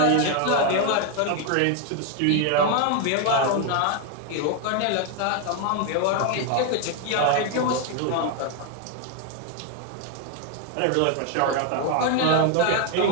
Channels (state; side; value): different; both; correlation 0.01